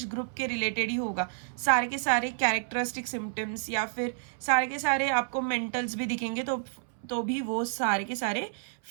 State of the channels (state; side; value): silent; left; 58 dB below the other